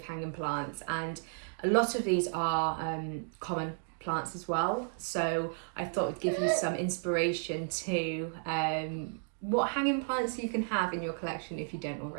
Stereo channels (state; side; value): silent; left; 56 dB below the other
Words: hanging plants, and a lot of these are common plants as well. So I thought it'd give you some inspiration to what hanging plants you can have in your collection if you don't